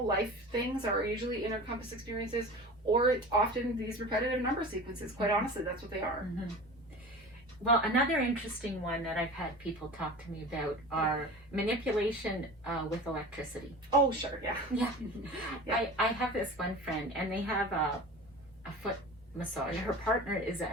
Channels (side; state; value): both; normal; correlation 0.35